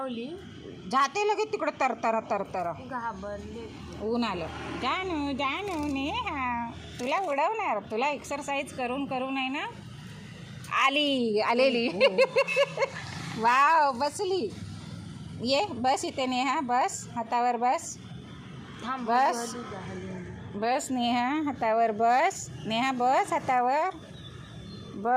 जाते लगेच तिकडं तरतरा. घाबरले. ऊन आलं. जानू नेहा तुला उडवणार, तुला एक्सरसाइज करून आहे ना आलेली. वाव बसली. ये बस इथे नेहा, बस हातावर बस. बस नेहा हातावर बस. नेहा बस हातावर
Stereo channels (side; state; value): both; identical; correlation 1.00